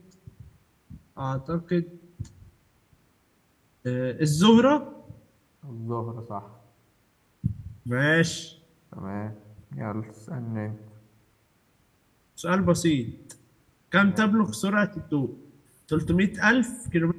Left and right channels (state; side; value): identical; both; correlation 1.00